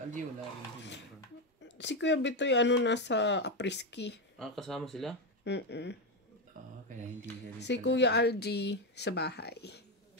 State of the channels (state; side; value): normal; both; correlation 0.09